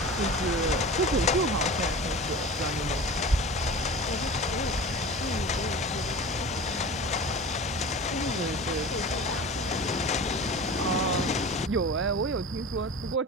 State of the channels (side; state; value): both; normal; correlation 0.35